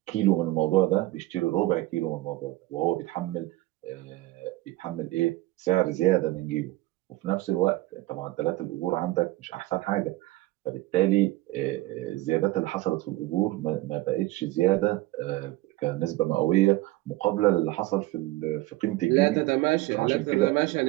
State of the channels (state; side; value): quieter; left; 18.2 dB